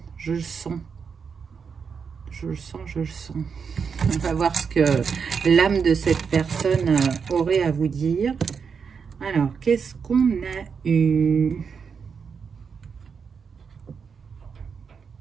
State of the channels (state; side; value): quieter; left; 6.1 dB